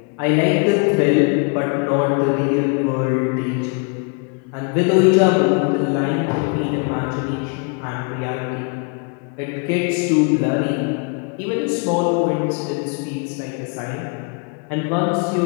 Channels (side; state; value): right; quieter; 36.7 dB